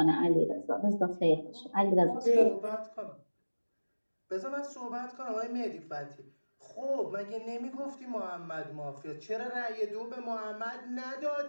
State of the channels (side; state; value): both; inverted; correlation -1.00